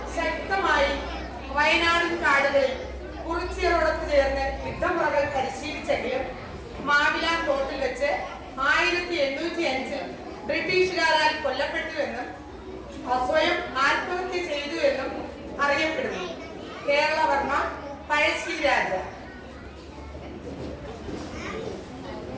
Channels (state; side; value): identical; both; correlation 1.00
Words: ശക്തമായി വയനാടൻ കാടുകളിൽ കുറിച്യരോടൊത്ത് ചേർന്ന് യുദ്ധമുറകൾ പരിശീലിച്ചെങ്കിലും മാവിലാൻ തോട്ടിൽ വെച്ച് 1805 ബ്രിട്ടീഷുകാരാൽ കൊല്ലപ്പെട്ടുവെന്നും സ്വയം ആത്മഹത്യ ചെയ്തു എന്നും അറിയപ്പെടുന്നു. കേരളവർമ്മ പഴശ്ശി രാജ.